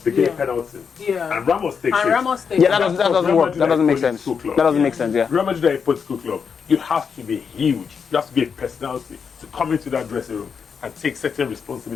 they get a penalty. And Ramos takes it. Yeah, that doesn't make sense. That doesn't make sense, yeah. Real Madrid are a political club. You have to be huge. You have to be a personality to come into that dressing room and take certain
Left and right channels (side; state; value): right; quieter; 6.3 dB